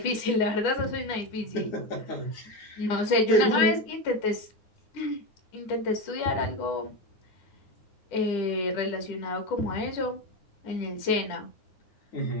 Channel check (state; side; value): late; right; 10 ms